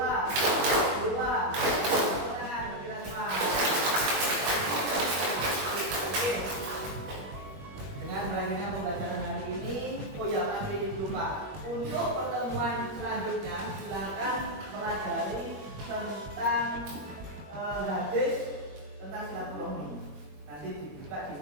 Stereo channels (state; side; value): late; left; 21 ms